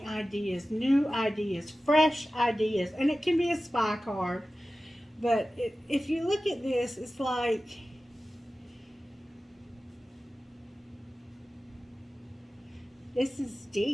ideas, new ideas, fresh ideas. And it can be a spy card. But if you look at this, it's like this is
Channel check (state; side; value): normal; both; correlation 0.95